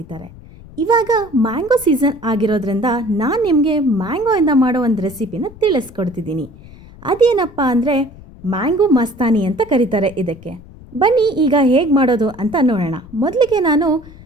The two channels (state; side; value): noise; left; rumble, 20 dB below the sound